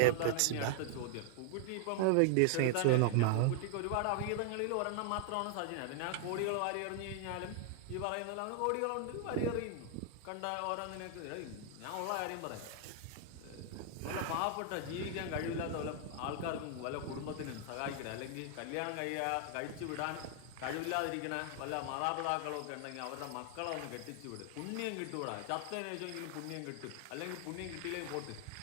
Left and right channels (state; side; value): different; both; correlation 0.00